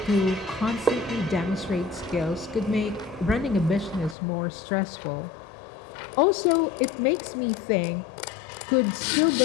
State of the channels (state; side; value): drops out; right; at 4.2 s